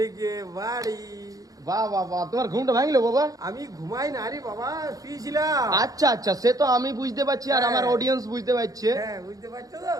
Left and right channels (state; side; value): late; left; 0.17 ms